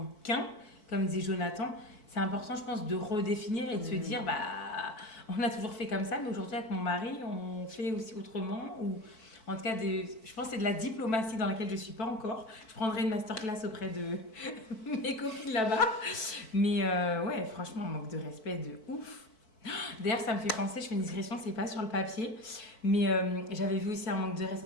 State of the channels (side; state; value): right; late; 4.5 ms